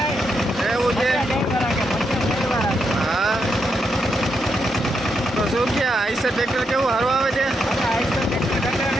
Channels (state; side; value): normal; both; correlation 0.81